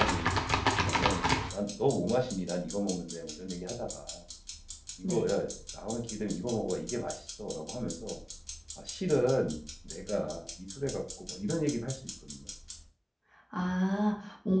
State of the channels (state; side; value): identical; both; correlation 1.00